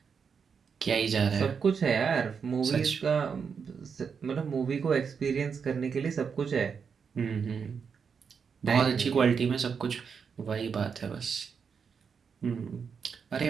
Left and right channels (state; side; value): quieter; left; 6.2 dB